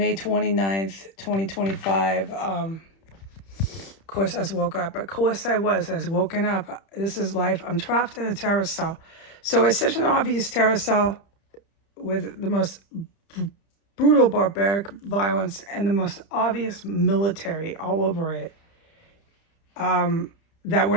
29th, 2025. Of course, I was woke up. Of course, I was woken up. This is life. I'm trapped in a terror cell. So it's such an obvious terror cell with the most brutal barbaric violence and the most obvious military all over it. That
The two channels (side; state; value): right; late; 30 ms